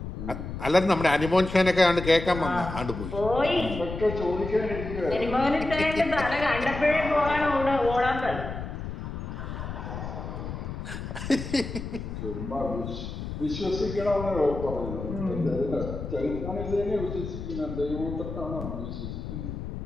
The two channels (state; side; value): noise; left; rumble, 7 dB below the sound